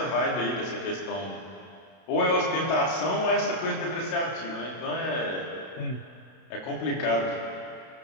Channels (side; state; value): right; late; 32 ms